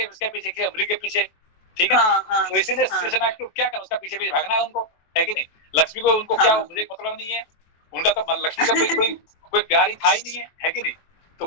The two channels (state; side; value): late; right; 23 ms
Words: उसके पीछे, मृग के पीछे। ठीक है ना? तो इसीलिए शेषनाग को क्या करना, उसका पीछे भागना है उनको, है कि नहीं? लक्ष्मी को उनको क्या, मुझे मतलब नहीं है उनका, तो लक्ष्मी का कोई प्यार ही था ही नहीं है कि नहीं? तो